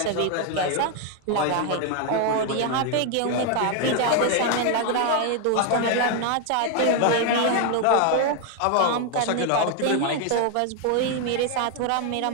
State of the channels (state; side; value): different; both; correlation 0.01